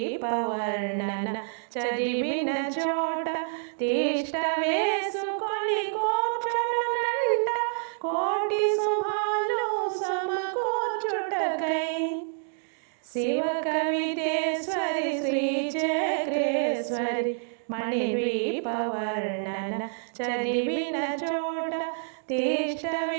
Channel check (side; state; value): left; silent; digital silence